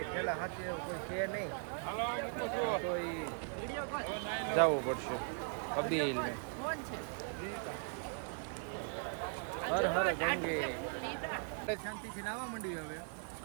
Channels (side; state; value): left; silent; 52 dB below the other